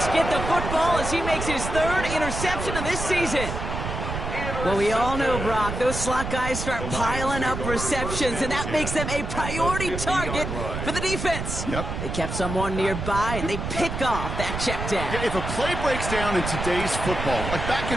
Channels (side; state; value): right; noise; rumble, 5 dB below the sound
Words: get the football as he makes his 3rd interception of this season. Well, we all know, Brock, those slot guys start piling up receptions, and that makes them a priority target for the defense. Yep. They kept someone nearby, and they pick off that check down. Yeah, if a play breaks down in today's football, like back